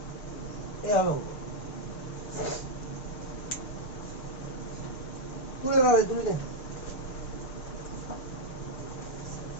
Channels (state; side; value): late; right; 6.5 ms